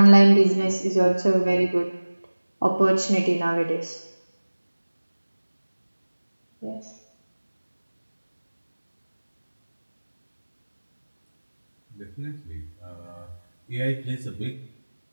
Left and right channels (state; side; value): inverted; both; correlation -1.00